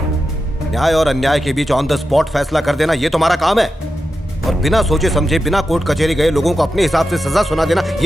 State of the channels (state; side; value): normal; both; correlation 0.90